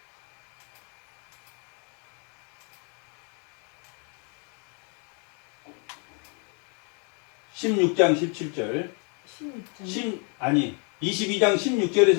16장 17절. 22장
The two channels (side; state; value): right; quieter; 37.3 dB